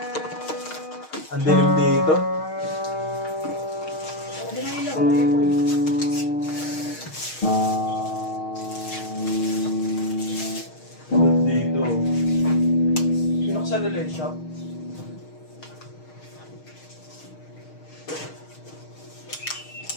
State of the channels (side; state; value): right; late; 6.4 ms